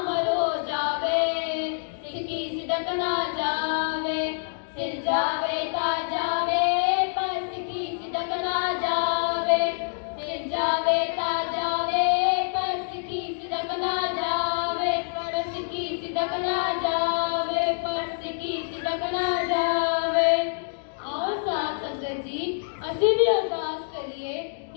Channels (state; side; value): silent; right; digital silence